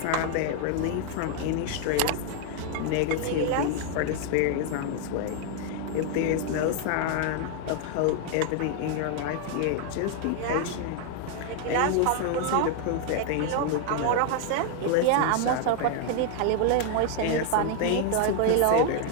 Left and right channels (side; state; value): both; different; correlation 0.00